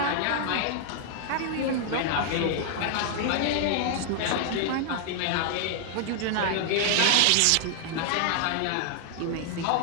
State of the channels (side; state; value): both; different; correlation 0.00